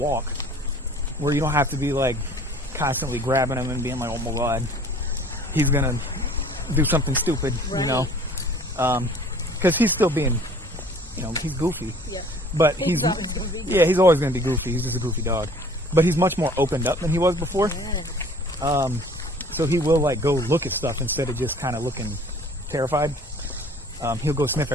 where you don't have to be like constantly grabbing him and being like, oh my God, he's gonna do something stupid, you know? Because he's still being, he's goofy. Yeah. But he's always gonna be goofy. He's just a goofy dog. But he's much more opened up than he was before. Yeah. So he will like go look at stuff instead of just kind of looking terrified. He'll go sniff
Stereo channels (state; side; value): normal; both; correlation 0.51